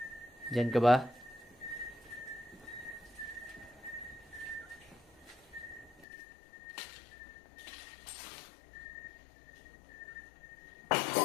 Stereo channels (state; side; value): drops out; right; at 6.1 s